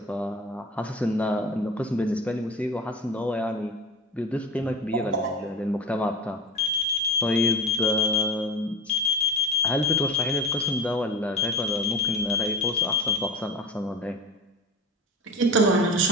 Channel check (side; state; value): both; normal; correlation 0.30